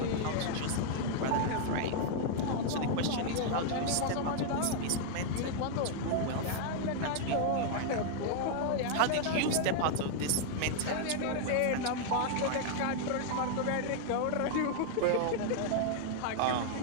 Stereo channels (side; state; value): both; different; correlation 0.00